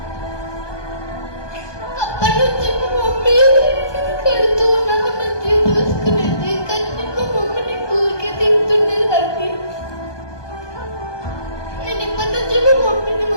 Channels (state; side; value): late; right; 1.2 ms